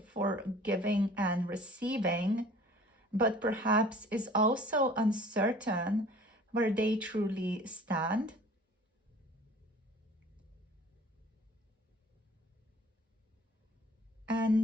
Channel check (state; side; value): normal; both; correlation 0.49